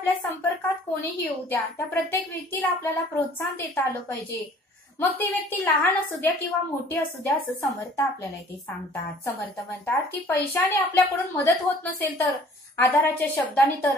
संपर्कात कोणीही येऊ द्या, त्या प्रत्येक व्यक्तीला आपल्याला प्रोत्साहन देता आलं पाहिजे. मग ती व्यक्ती लहान असू द्या किंवा मोठी असू द्या, असं समर्थ आपल्याला इथे सांगतात. समर्थ म्हणतात की पैशाने आपल्याकडून मदत होत नसेल तर आधाराच्या शब्दाने तर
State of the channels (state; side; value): normal; both; correlation 0.52